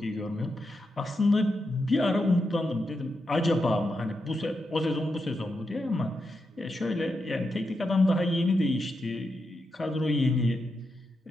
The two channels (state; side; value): normal; both; correlation 0.86